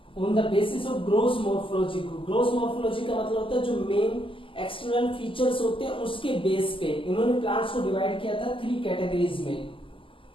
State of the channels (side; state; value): right; late; 0.25 ms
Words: Gross morphology का मतलब होता है जो मेन एक्सटर्नल फीचर्स होते हैं उसके बेस पे इन्होंने प्लांट्स को डिवाइड किया था 3 कैटेगरीज में.